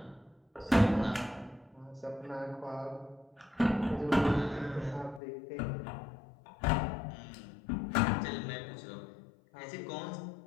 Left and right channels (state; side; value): drops out; right; at 5.2 s